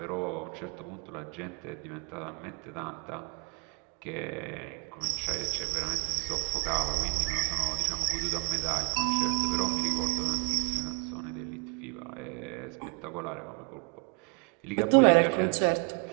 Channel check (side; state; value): left; quieter; 35.4 dB